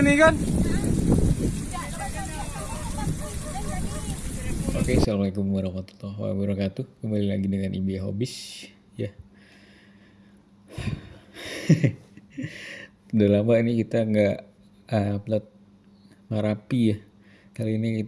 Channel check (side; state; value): both; identical; correlation 1.00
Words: ini kan. Oke, assalamualaikum warahmatullahi wabarakatuh. Kembali lagi dengan Ibi Hobis, ya. Udah lama ini kita nggak upload Merapi ya. Kali ini